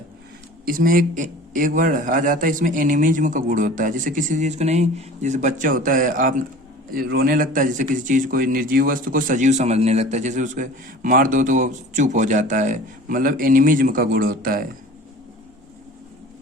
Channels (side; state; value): both; normal; correlation 0.42